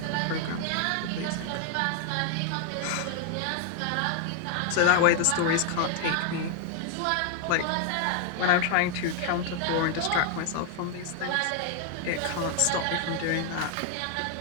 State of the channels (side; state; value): both; different; correlation 0.00